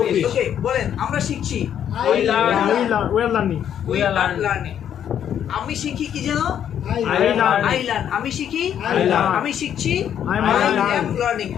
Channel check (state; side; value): quieter; right; 9.5 dB